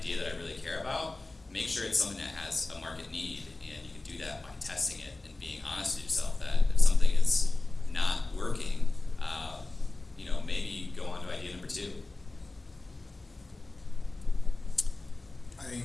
that I really care about, make sure it's something that has a market need, and you can do that by testing it and being honest with yourself that if something is not working, maybe go on to idea number 2. I think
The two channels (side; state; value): right; quieter; 3.1 dB